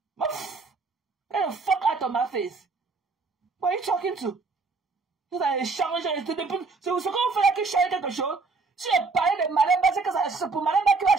Get the fuck out of my face. What are you talking to? Vous allez changer. C'est ce qu'on fait là qui change quelque chose. Si je parlais de Malemba, c'est pour Malemba qui va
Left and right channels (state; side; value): quieter; left; 4.1 dB